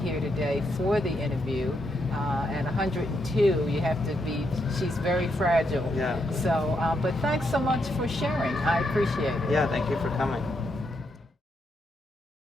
today for the interview. At 102, you have to be, she's very fragile. Yeah. So, but thanks so much for sharing. I appreciate it. Yeah, thank you for coming.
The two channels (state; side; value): normal; both; correlation 0.80